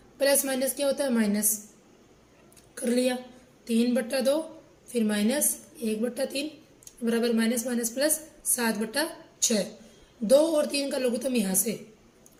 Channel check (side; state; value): both; identical; correlation 1.00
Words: प्लस माइनस क्या होता है माइनस, कर लिया 3/2, फिर माइनस 1/3 बराबर माइनस माइनस प्लस 7/6। 2 और 3 का लघुत्तम यहाँ से,